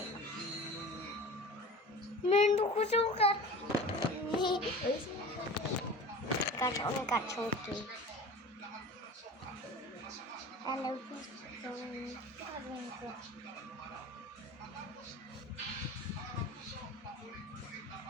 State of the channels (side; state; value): both; normal; correlation 0.37